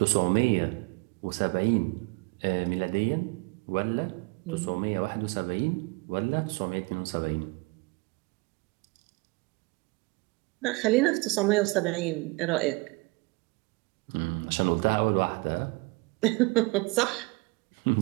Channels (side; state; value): left; quieter; 26.6 dB